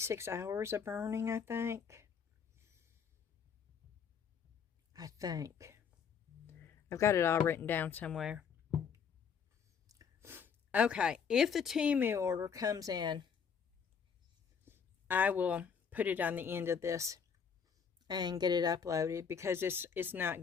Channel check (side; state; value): right; quieter; 6.7 dB